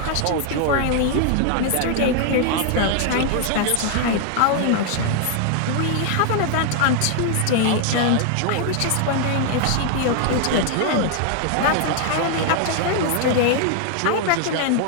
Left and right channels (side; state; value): both; different; correlation 0.00